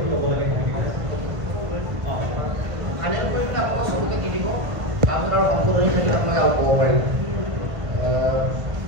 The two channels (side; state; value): left; late; 1.5 ms